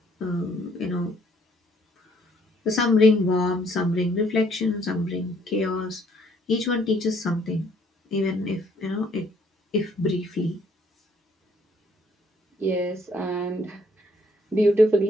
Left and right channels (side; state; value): both; normal; correlation 0.65